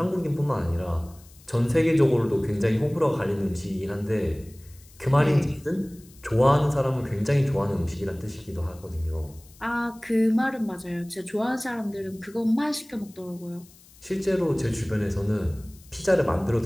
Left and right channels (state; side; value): noise; left; hiss, 25 dB below the sound